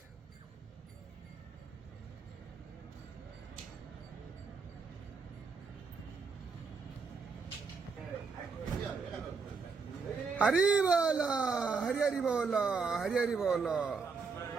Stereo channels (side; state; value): left; quieter; 5.0 dB